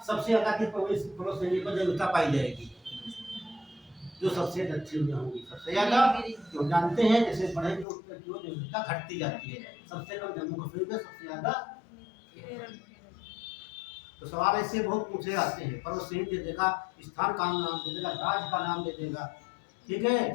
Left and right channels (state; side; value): drops out; right; at 7.9 s